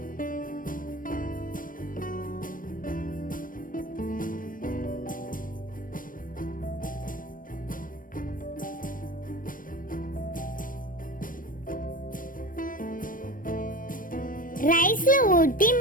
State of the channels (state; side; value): late; right; 0.40 ms